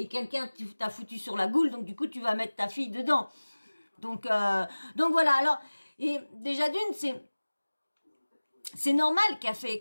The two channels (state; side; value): inverted; both; correlation -1.00